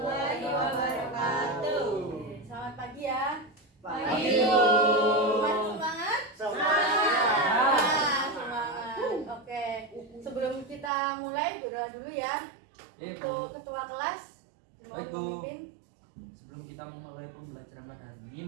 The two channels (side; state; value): left; drops out; at 10.9 s